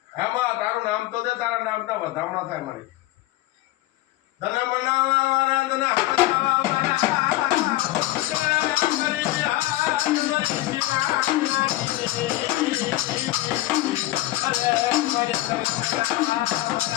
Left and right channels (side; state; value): right; quieter; 16.9 dB